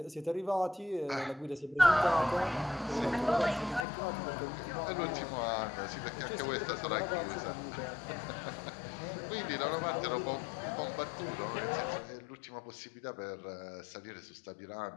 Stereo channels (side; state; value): right; drops out; at 3.9 s